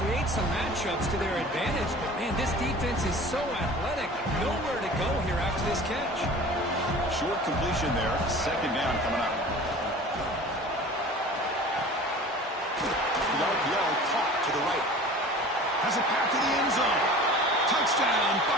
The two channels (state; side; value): normal; both; correlation 0.42